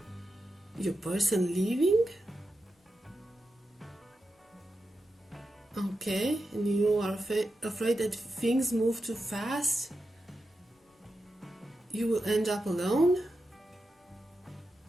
your person leaving. Okay, and you are afraid that things move too fast. You will end up alone.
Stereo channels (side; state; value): both; normal; correlation 0.89